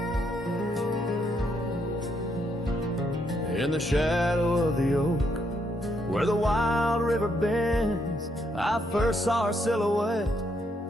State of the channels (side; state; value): both; normal; correlation 0.75